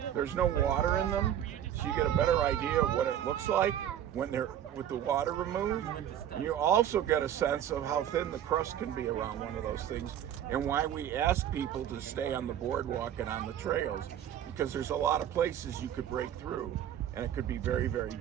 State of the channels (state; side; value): quieter; left; 10.5 dB